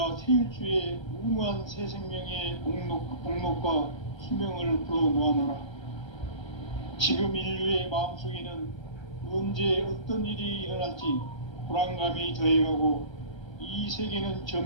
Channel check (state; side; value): late; right; 1.3 ms